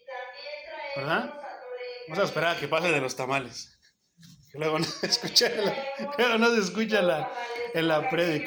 ¿Verdad? Vamos a esperar a que pase de los tamales. Que luego no se escucha en la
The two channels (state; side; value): identical; both; correlation 1.00